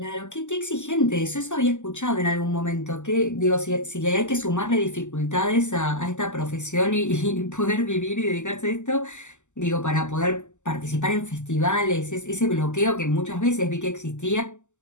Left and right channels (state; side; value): late; right; 0.84 ms